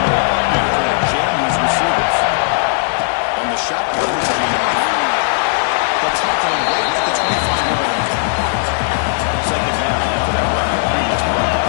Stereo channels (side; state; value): right; silent; digital silence